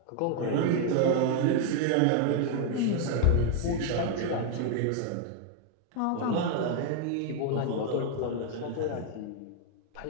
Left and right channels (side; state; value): both; different; correlation 0.00